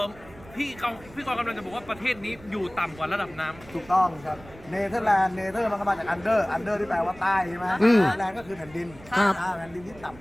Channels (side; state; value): right; noise; rumble, 21 dB below the sound